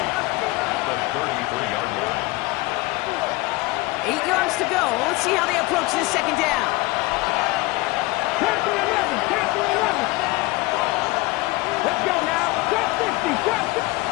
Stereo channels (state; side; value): quieter; right; 22.0 dB